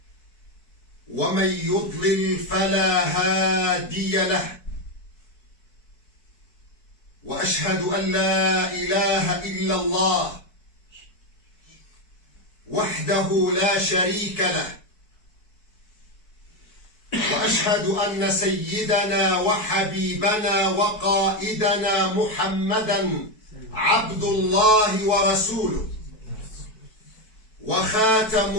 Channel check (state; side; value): late; right; 4.6 ms